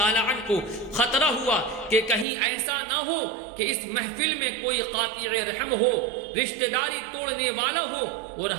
عنہ کو خطرہ ہوا کہ کہیں ایسا نہ ہو کہ اس محفل میں کوئی قاطع رحم ہو، رشتہ داری توڑنے والا ہو اور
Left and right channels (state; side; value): drops out; left; at 2.2 s